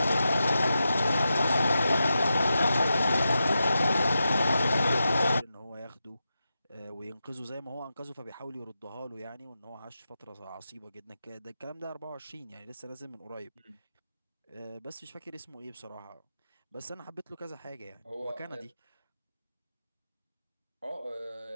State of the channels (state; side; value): inverted; both; correlation -0.90